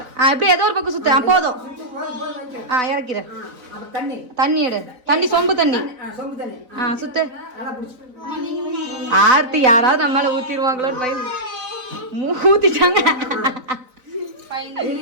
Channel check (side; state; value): left; late; 4.0 ms